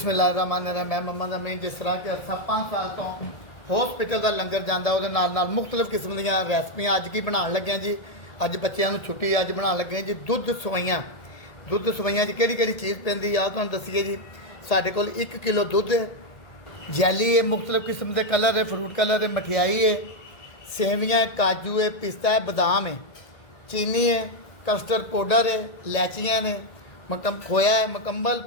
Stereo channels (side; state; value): right; late; 1.8 ms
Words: मैं मम्मा ਦਾ ਮੈਂ ਜਿਸ ਤਰ੍ਹਾਂ ਕਿ ਅਰਸਾ 5 ਸਾਲ ਤੋਂ ਹਸਪੀਟਲ ਦਾ ਲੰਗਰ ਜਾਂਦਾ ਉਹਦੇ ਨਾਲ ਮੁxtਲਫ ਕਿਸਮ ਦੀਆਂ ਰੈਸਪੀਆਂ ਅੱਜ ਕੀ ਬਣਾਉਣ ਲੱਗਿਆ ਜੀ। ਅੱਜ ਬੱਚਿਆਂ ਨੂੰ ਛੁੱਟੀ ਅੱਜ ਬਣਾਉਣ ਲੱਗੇ ਜੀ ਦੁੱਧ ਸਵਈਆਂ 'ਚ ਕਿਹੜੀ ਕਿਹੜੀ ਚੀਜ਼ ਪੈਂਦੀ ਆ ਤੁਹਾਨੂੰ ਦੱਸੀਏ ਜੀ। ਸਾਡੇ ਕੋਲ 1 ਕਿਲੋ ਦੁੱਧ ਹੈ ਜੈਲੀ ਹੈ ਮੁxtਲਫ ਕਿਸਮ ਦੇ ਕਲਰ ਹੈ ਫਰੂਟ ਕਲਰ ਹੈ ਮਠਿਆਈ ਹੈ ਸੇਵੀਆਂ ਹੈ ਕਾਜੂ ਹੈ ਪਿਸਤਾ ਹੈ ਬਦਾਮ ਹੈ ਚੀਨੀ है कस्टर्ड पाउडर है इलायचियाँ ने खोया है मुकम्मल